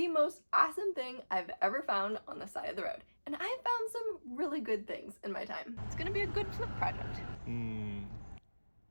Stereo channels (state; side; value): inverted; both; correlation -1.00